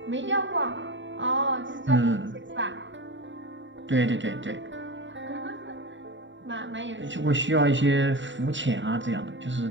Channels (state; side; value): late; left; 0.54 ms